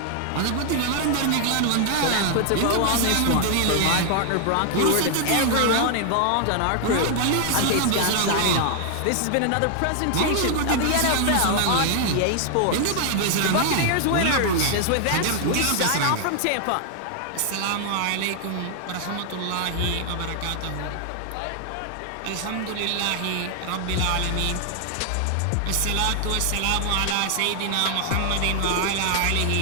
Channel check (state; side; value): different; both; correlation 0.00